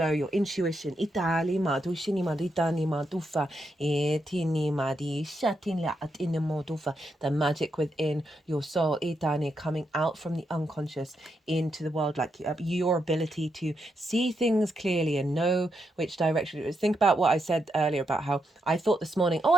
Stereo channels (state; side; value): normal; both; correlation 0.82